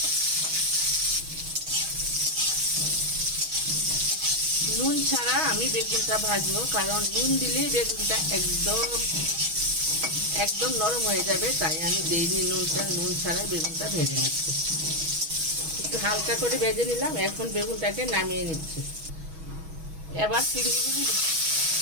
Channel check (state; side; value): late; left; 6.3 ms